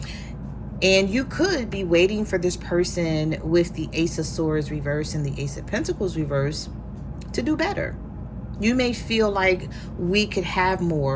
And you could be waiting for this person with the Ace of Swords reverse and the Ace of Pentacles reverse to do better. You may feel like we could have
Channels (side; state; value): both; identical; correlation 1.00